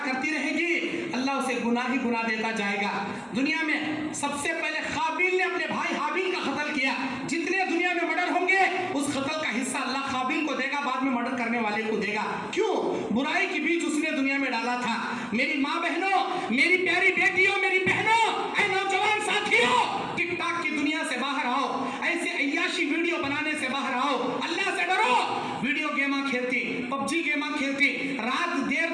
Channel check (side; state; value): both; identical; correlation 1.00